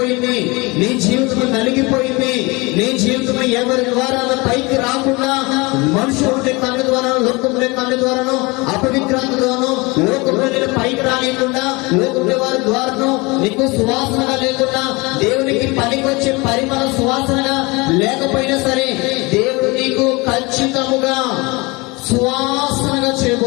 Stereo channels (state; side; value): quieter; right; 25.4 dB